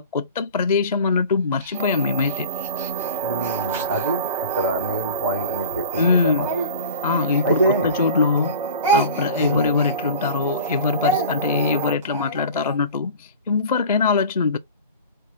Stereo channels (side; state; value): both; inverted; correlation -0.39